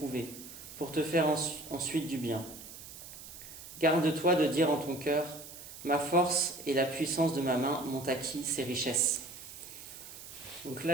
pour te faire ensuite du bien. Garde-toi de dire en ton cœur, ma force et la puissance de ma main m'ont acquis ces richesses. Donc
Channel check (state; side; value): noise; right; hiss, 14 dB below the sound